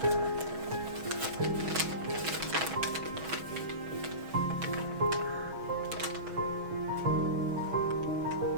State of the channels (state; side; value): late; left; 6.2 ms